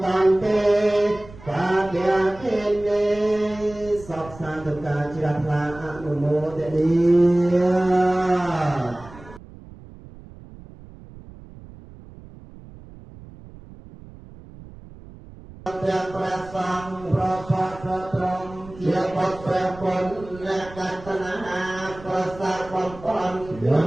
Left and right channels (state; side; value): noise; right; rumble, 18 dB below the sound